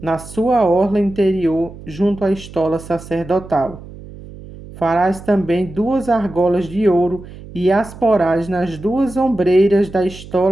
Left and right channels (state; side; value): noise; right; hum, 16 dB below the sound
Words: na sua orla interior, junto à estola sacerdotal. Farás também 2 argolas de ouro, e as porás nas 2 ombreiras da